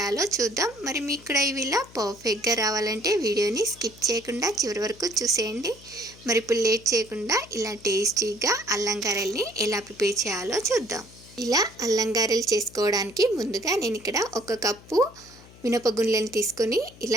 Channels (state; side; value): noise; left; hum, 22 dB below the sound